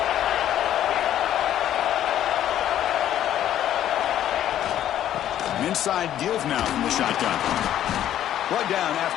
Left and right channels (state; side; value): quieter; right; 11.5 dB